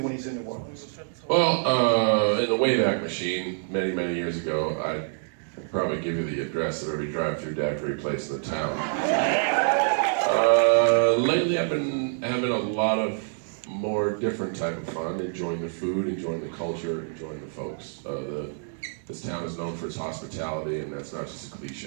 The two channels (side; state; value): left; silent; digital silence